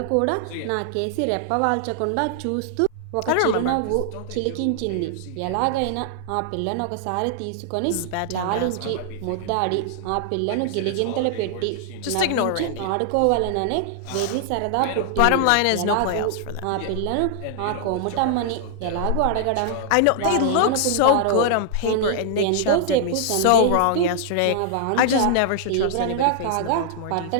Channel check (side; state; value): both; different; correlation -0.01